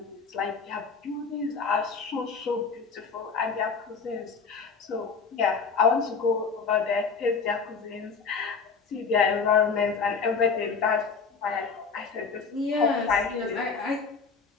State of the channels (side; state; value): right; quieter; 5.2 dB